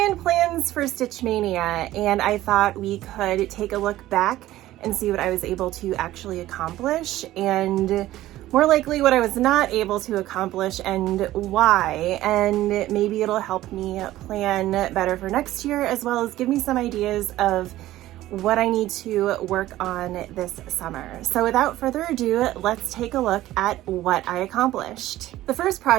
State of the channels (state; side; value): quieter; left; 15.2 dB